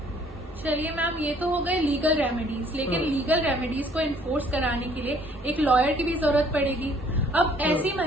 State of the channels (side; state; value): both; normal; correlation 0.59